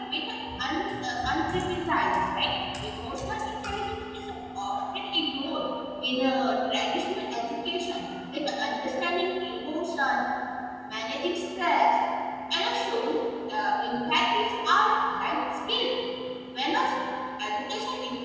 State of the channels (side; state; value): both; identical; correlation 1.00